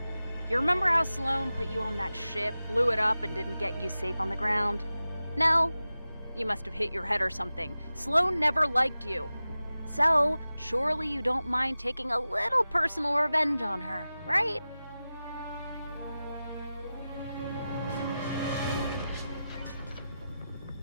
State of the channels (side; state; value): both; inverted; correlation -0.94